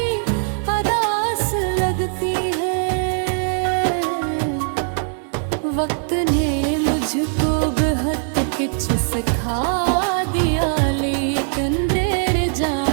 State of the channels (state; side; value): silent; left; 65 dB below the other